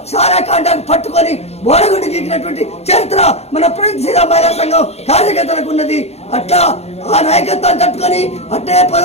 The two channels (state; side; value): late; right; 0.31 ms